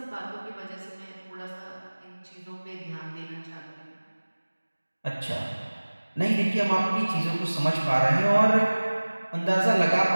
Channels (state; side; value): inverted; both; correlation -1.00